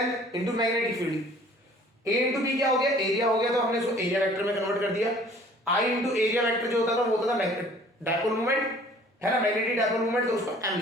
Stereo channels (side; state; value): both; normal; correlation 0.52